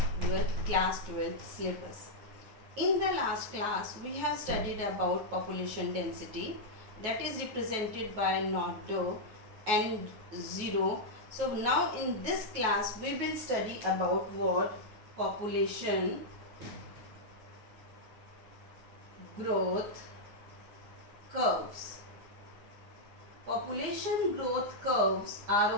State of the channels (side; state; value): left; late; 9.4 ms